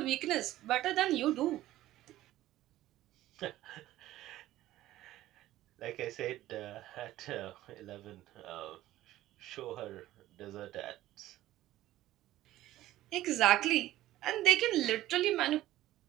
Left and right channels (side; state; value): left; quieter; 14.9 dB